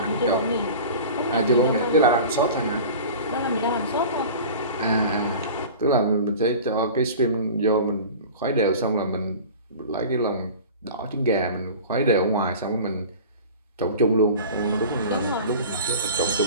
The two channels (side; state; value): both; inverted; correlation -0.38